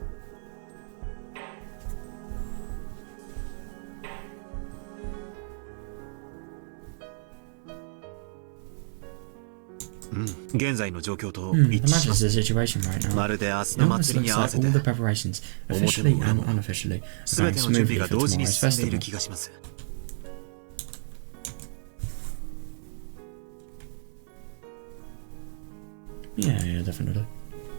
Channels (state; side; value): silent; left; digital silence